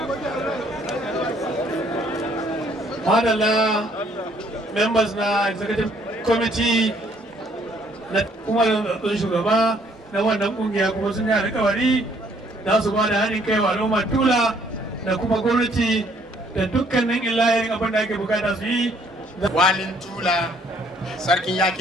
Madalla members na executive committee na kuma zaɓen shugaba na wannan kungiya kuma sun yi alƙawari za su ba da haɗin kai wa al'ummar Tula da kuma gwamnati da dukkanin illahirin abin da ake bukata su yi. Walin Tula, Sarkin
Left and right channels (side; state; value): both; normal; correlation 0.64